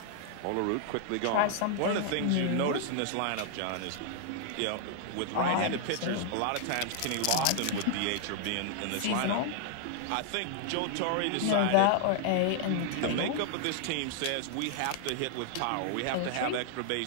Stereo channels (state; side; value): different; both; correlation 0.00